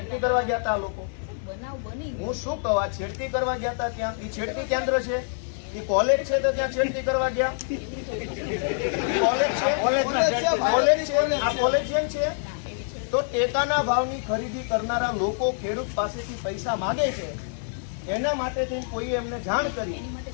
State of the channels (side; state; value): right; silent; digital silence